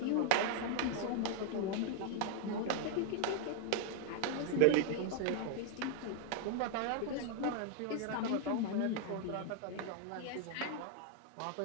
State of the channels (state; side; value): different; both; correlation 0.00